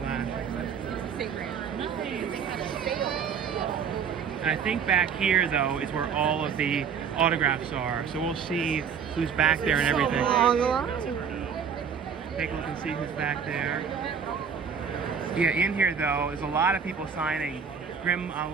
And I think back here though is where all of the autographs are. So we'll see who's back there and everything. Take a look and see who's back there. Yeah, in here though, there's a lot of people signing. Grim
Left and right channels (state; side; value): quieter; left; 6.8 dB